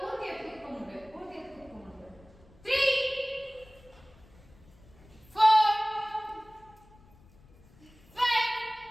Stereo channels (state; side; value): noise; left; rumble, 26 dB below the sound